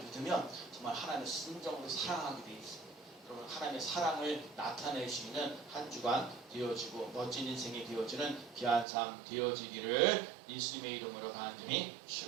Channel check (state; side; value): drops out; left; at 8.8 s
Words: 정말 하나님을 순정으로 사랑하게 돼 있어요. 여러분 하나님의 사랑을 나타낼 수 있는 한 주간 되어지고 멋진 인생이 되어지는 귀한 삶 되어지기를 예수님의 이름으로 간절히